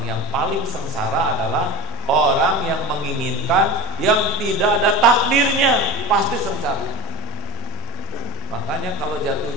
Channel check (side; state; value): both; normal; correlation 0.24